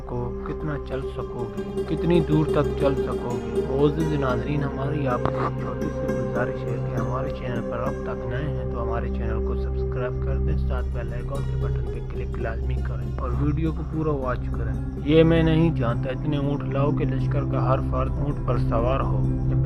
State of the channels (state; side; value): identical; both; correlation 1.00